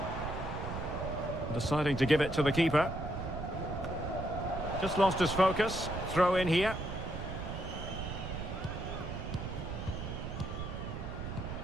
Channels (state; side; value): noise; right; rumble, 6 dB below the sound